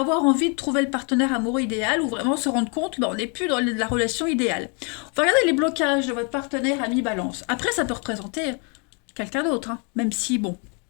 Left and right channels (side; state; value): right; quieter; 35.7 dB